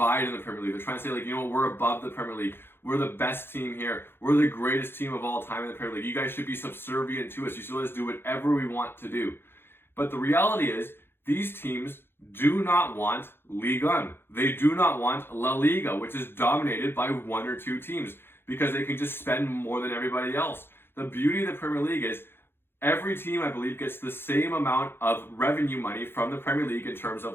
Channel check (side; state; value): right; late; 0.11 ms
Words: in the Premier League, they're trying to say like, we're above the Premier League. We're the best team here. We're the greatest team of all time in the Premier League. You guys should be subservient to us. You should let us do whatever we want to do. But the reality is these teams do not want Ligue 1. They do not want La Liga, which is dominated by one or two teams because they can just spend more than everybody else. The beauty of the Premier League is every team, I believe, gets the same amount of revenue money from the Premier League in terms